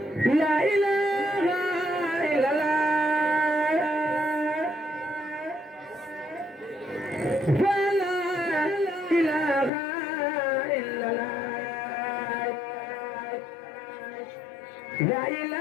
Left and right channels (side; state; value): right; drops out; at 9.7 s